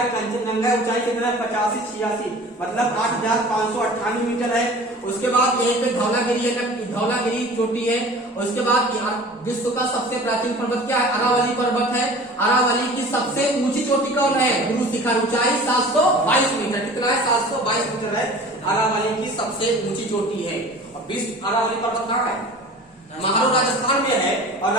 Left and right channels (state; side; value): normal; both; correlation 0.42